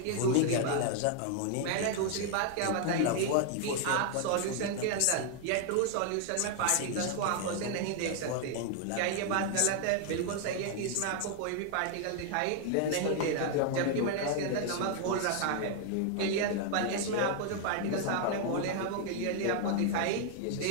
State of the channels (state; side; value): different; both; correlation 0.00